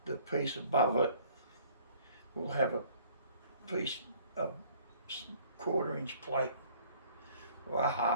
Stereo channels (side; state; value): both; inverted; correlation -0.55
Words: the piece above it will have a piece of 1/4 inch plate or a